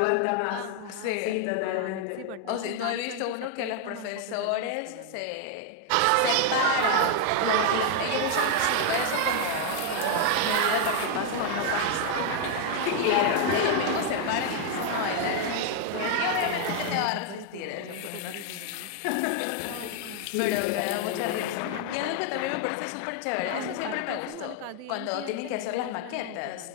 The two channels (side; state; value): both; different; correlation 0.00